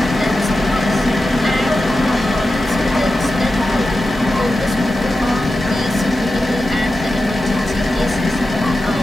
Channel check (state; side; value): normal; both; correlation 0.92